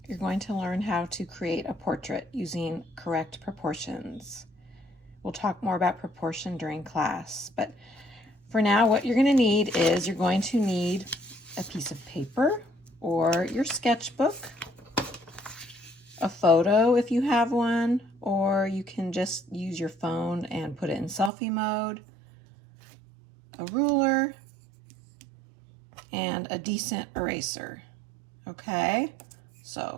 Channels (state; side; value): drops out; left; at 21.3 s